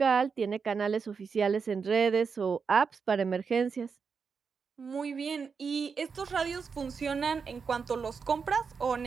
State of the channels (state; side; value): quieter; left; 5.6 dB